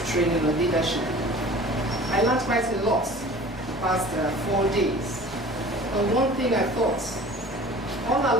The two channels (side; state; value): both; normal; correlation 0.43